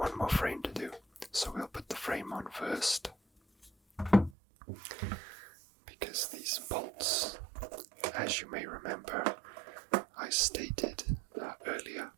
more frame to do. So we'll put the frame on first, because these bolts, as you may remember, I stated earlier,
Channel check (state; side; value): drops out; left; at 4.4 s